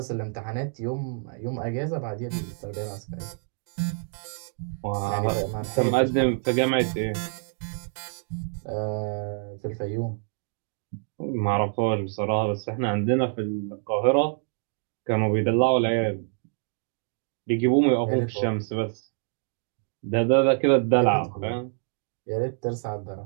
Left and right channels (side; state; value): left; silent; 58 dB below the other